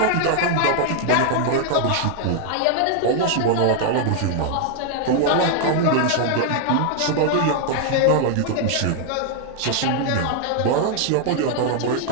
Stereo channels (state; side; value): different; both; correlation 0.00